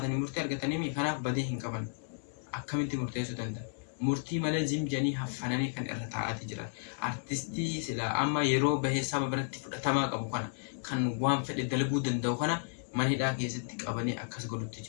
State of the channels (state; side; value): silent; right; digital silence